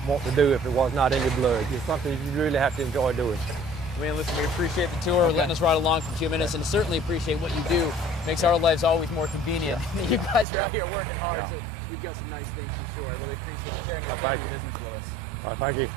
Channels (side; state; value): left; drops out; at 10.5 s